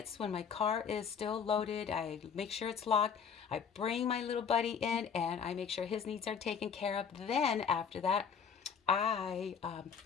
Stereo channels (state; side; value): quieter; right; 6.8 dB